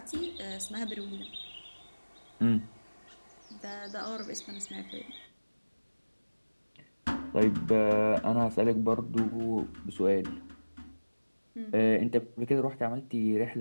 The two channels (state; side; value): inverted; both; correlation -1.00